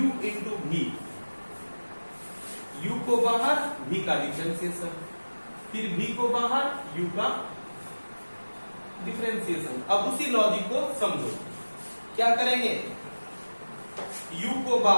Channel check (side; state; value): both; inverted; correlation -1.00